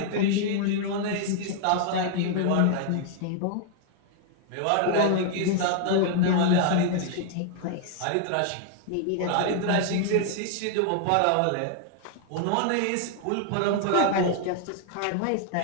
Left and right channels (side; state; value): both; different; correlation 0.00